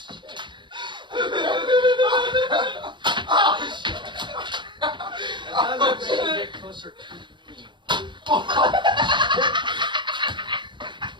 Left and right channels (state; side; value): late; left; 0.22 ms